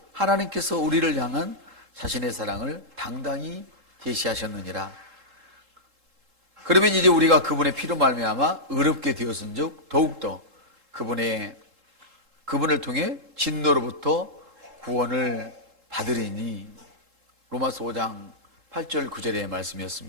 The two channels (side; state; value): left; late; 3.7 ms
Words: 하나님께서 우리를 향한 자신의 사랑을 당당히 계시하셨느니라. 그러면 이제 우리가 그분의 피로 말미암아 의롭게 되었은즉 더욱더 그분을 통해 진노로부터 구원을 받으리니. 로마서 5장 8절 9절의